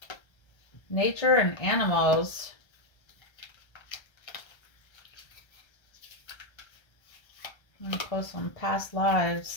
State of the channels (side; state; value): right; late; 1.3 ms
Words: Nature and animals. I'm going to post some past